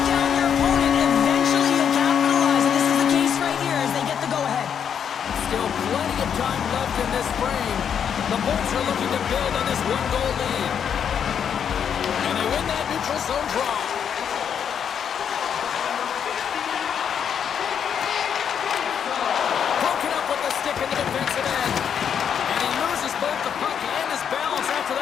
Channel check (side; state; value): right; quieter; 8.0 dB